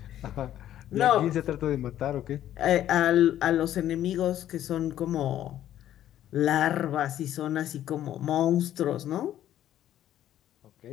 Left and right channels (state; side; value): quieter; right; 11.9 dB